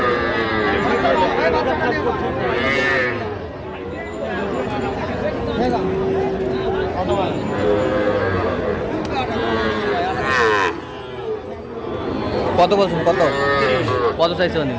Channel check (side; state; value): both; identical; correlation 1.00